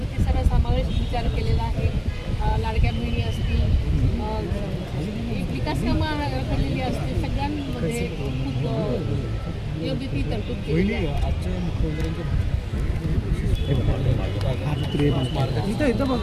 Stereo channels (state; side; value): identical; both; correlation 1.00